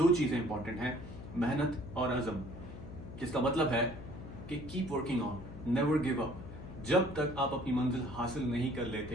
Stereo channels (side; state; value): left; noise; hum, 12 dB below the sound